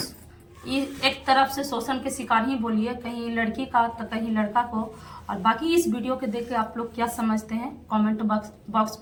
एक तरफ से शोषण के शिकार ही बोलिए, कहीं लड़की का तो कहीं लड़का को। और बाकी इस वीडियो के देख के आप लोग क्या समझते हैं, कमेंट बॉक्स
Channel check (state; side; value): identical; both; correlation 1.00